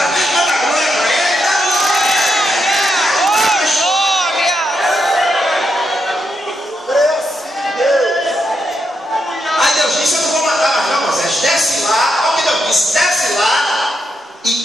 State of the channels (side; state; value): both; normal; correlation 0.82